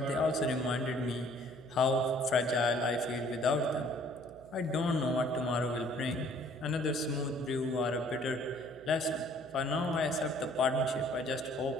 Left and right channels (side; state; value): right; noise; hum, 20 dB below the sound